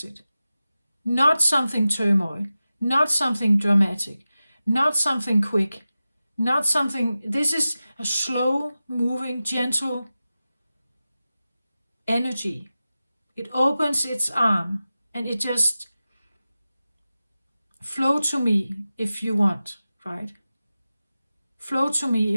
it. Not something turmoil, not something dramatic, not something quick, not something. This is a slow moving, gentle energy. It opens its arm and it just flow to me if you want, right? Flow to me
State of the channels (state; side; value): inverted; both; correlation -0.95